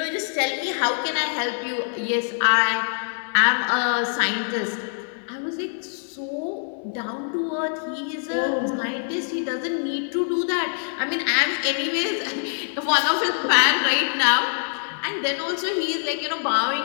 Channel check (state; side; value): silent; right; 62 dB below the other